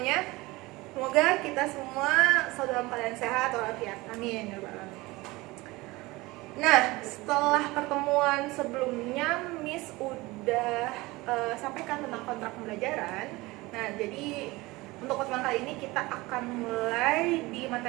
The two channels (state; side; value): quieter; left; 21.5 dB